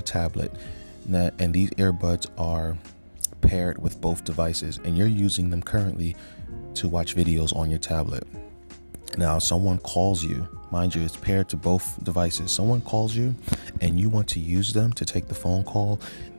tablet, and these earbuds are paired with both devices, and you're using them currently to watch videos on your tablet. Now someone calls you, mind you, it's paired to both devices. Someone calls you and you want to use them to take the phone call.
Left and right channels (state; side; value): inverted; both; correlation -1.00